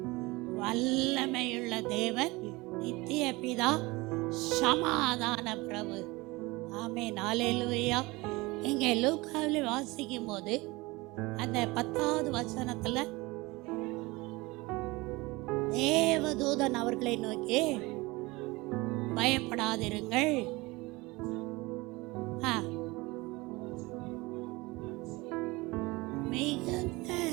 வல்லமையுள்ள தேவன், நித்திய பிதா, சமாதான பிரபு. ஆமென். அல்லேலூயா. இங்கே லூக்காவில் வாசிக்கும் போது அந்த 10வது வசனத்துல தேவதூதன் அவர்களை நோக்கி, பயப்படாதிருங்கள், மிகுந்த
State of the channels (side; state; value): left; quieter; 22.8 dB